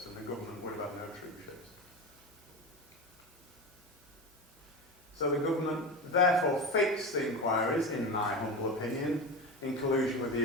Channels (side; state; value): both; normal; correlation 0.24